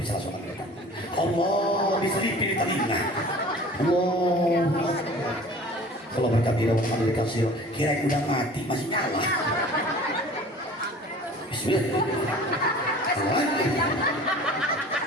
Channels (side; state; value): both; normal; correlation 0.44